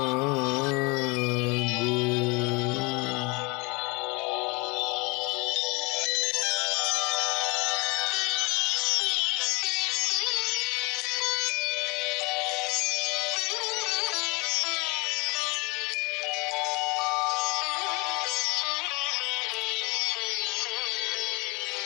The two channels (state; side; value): quieter; right; 27.7 dB